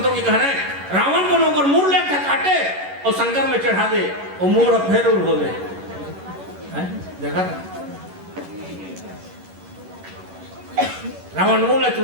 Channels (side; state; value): left; late; 11 ms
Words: की कहना है रावण को नौकर मूड ले काटे और शंकर में चढ़ा दे और मूड फेर उड़ हो गए। देखा था रावण मूल